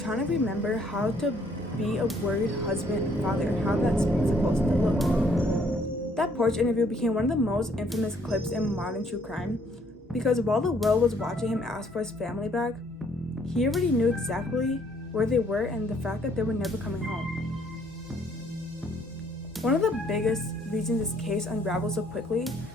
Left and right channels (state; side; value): normal; both; correlation 0.65